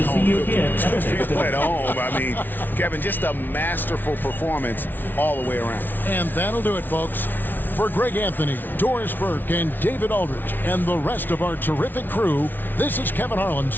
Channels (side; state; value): right; late; 0.091 ms